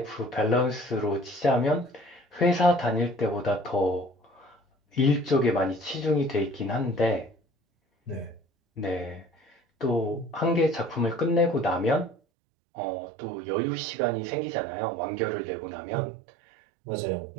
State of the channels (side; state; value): left; drops out; at 12.2 s